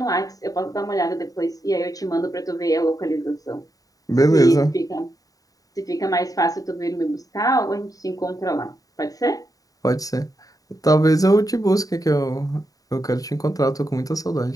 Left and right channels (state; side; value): late; right; 0.18 ms